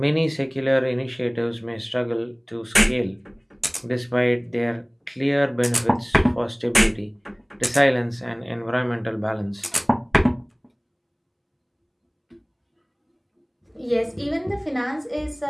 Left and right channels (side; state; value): both; identical; correlation 1.00